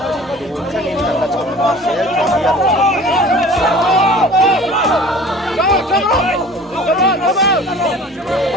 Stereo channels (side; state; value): both; normal; correlation 0.44